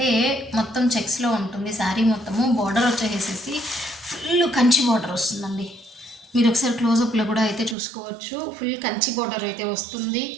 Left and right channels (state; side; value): drops out; left; at 7.8 s